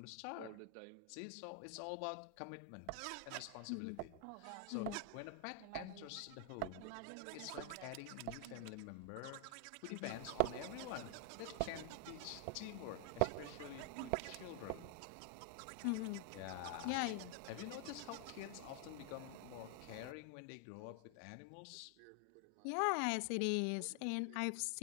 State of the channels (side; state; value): both; different; correlation 0.00